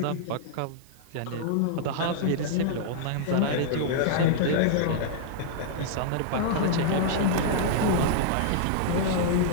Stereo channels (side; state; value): both; different; correlation -0.01